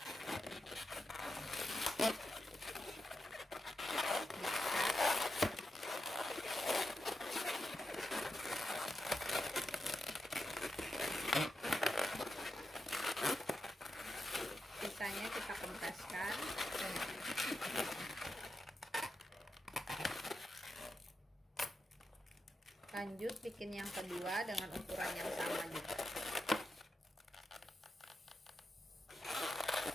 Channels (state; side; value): normal; both; correlation 0.87